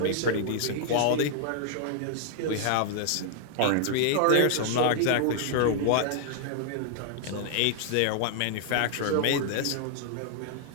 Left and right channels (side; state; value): both; different; correlation -0.01